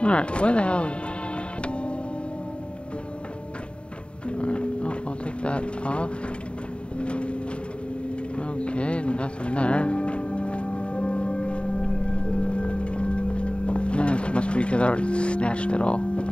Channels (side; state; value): right; late; 0.056 ms